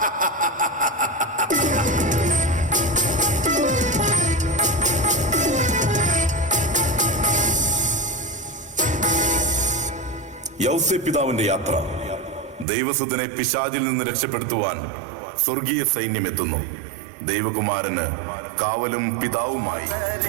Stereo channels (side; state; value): left; drops out; at 12.7 s